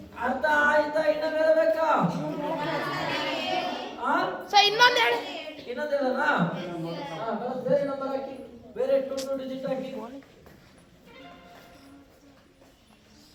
ಅರ್ಥ ಆಯ್ತಾ? ಇನ್ನ ಬರಬೇಕಾ? ಸರ್ ಇನ್ನೊಂದು ಹೇಳಿ. ಇನ್ನೊಂದು ಹೇಳೋಣ? ಬೇರೆ ನಂಬರ್ ಹಾಕಿ, ಬೇರೆ 2 ಡಿಜಿಟ್ ಹಾಕಿ.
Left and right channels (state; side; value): identical; both; correlation 1.00